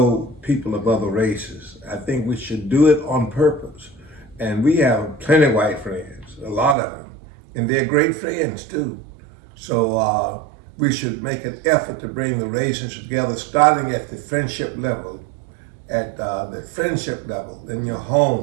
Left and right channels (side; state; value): left; drops out; at 6.8 s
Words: people of other races. I think we should do it on purpose. And we have plenty of white friends, a lot of them, and they're great friends too. So we should make an effort to bring the races together, starting at the friendship level, in your